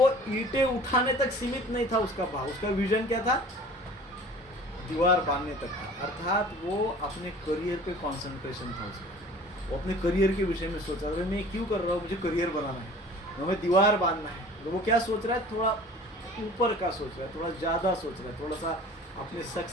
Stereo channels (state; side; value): normal; both; correlation 0.45